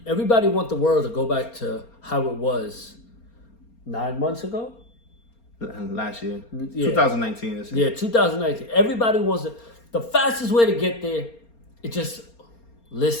Everybody wants the world to go back to how it was 9 months ago? Last year. Yeah. 2019. This Yeah, 2019. Everybody wants it. The fastest way to get there, it just,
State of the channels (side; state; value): right; late; 4.3 ms